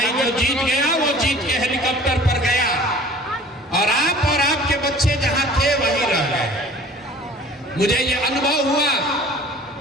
जो जीत गया वो जीत के हेलीकॉप्टर पर गया, और आप और आपके बच्चे जहां थे वहीं रह गए। मुझे ये अनुभव हुआ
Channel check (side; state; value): both; normal; correlation 0.47